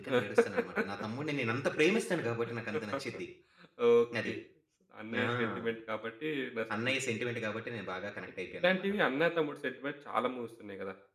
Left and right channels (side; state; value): both; identical; correlation 1.00